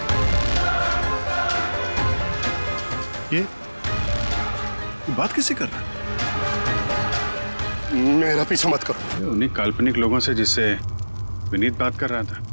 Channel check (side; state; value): both; inverted; correlation -1.00